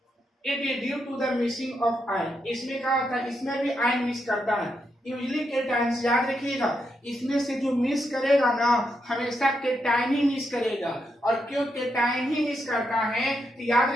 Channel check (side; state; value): both; normal; correlation 0.82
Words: it is due to the missing of ion. इसमें क्या होता है, इसमें भी आयन मिस करता है। यूजली केटायन्स, याद रखिएगा, इसमें से जो मिस करेगा ना, हमेशा केटायन ही मिस करेगा। और क्यों केटायन ही मिस करता है, तो याद